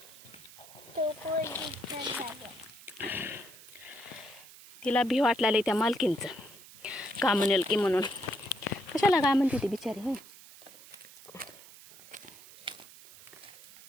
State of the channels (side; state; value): right; noise; hiss, 19 dB below the sound